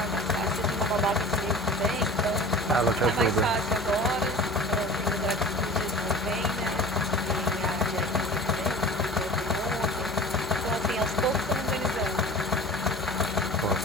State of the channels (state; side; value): normal; both; correlation 0.40